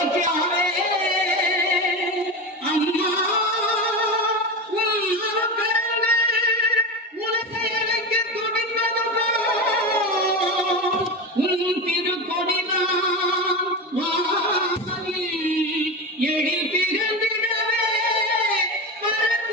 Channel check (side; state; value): both; normal; correlation 0.21